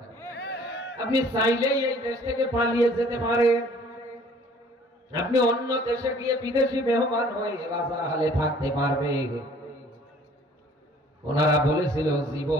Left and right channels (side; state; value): both; normal; correlation 0.54